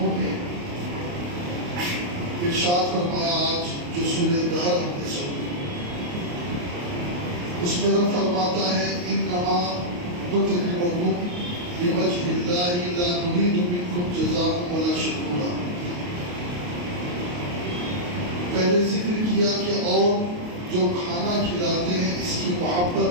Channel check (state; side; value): late; left; 28 ms